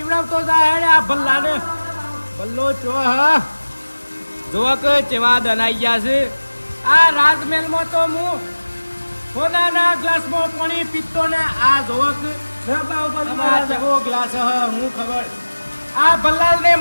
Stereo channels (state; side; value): inverted; both; correlation -1.00